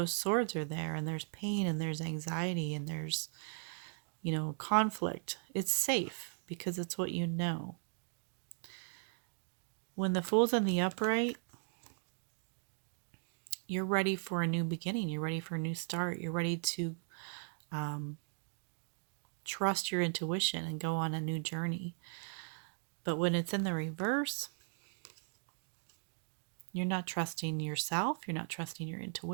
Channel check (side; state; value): left; silent; 53 dB below the other